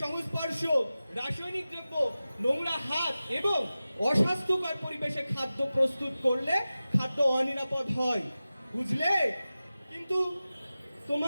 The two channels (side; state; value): both; inverted; correlation -0.95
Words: সংস্পর্শ, রাসায়নিক দ্রব্য, নোংরা হাত এবং অস্বাস্থ্যকর পরিবেশে খাদ্য প্রস্তুত করলে খাদ্য অনিরাপদ হয়, বুঝলে? কিন্তু